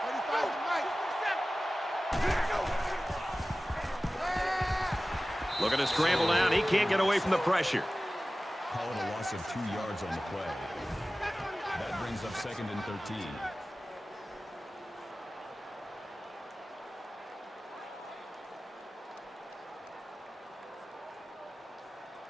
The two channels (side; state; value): both; normal; correlation 0.97